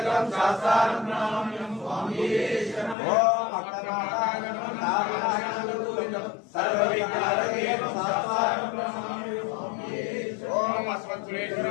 శాస్త్రాన ప్రణామ్యం ఓం అక్షరాణం నారాయణం సర్వవిజ్ఞానదేవం శాస్త్రాన ప్రణామ్యం ఓం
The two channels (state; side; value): drops out; right; at 3.0 s